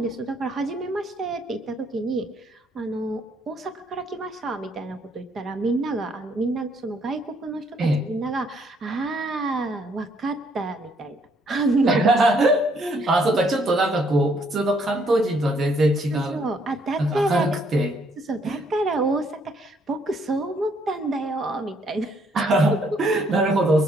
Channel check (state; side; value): normal; both; correlation 0.68